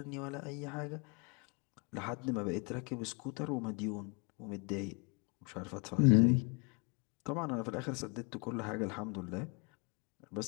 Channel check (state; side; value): quieter; right; 34.5 dB